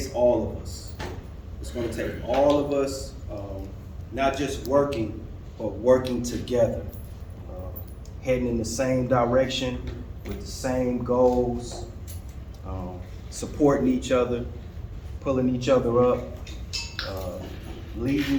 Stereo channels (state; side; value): identical; both; correlation 1.00